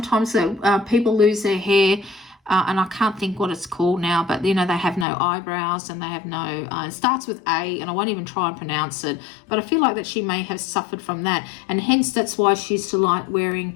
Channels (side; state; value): right; drops out; at 5.1 s